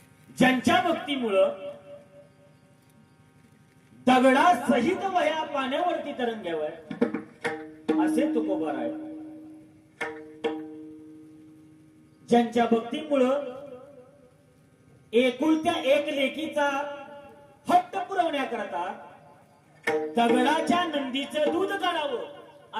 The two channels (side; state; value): both; identical; correlation 1.00